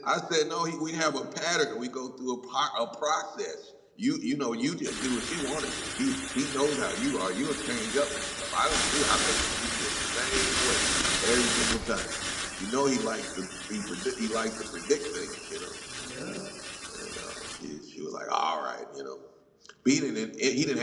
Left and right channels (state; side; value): identical; both; correlation 1.00